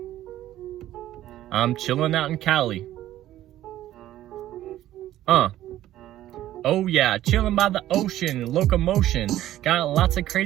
I'm chilling out in Cali. Oh yeah, chilling by the ocean, locomotion. Got lots of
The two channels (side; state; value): left; quieter; 13.5 dB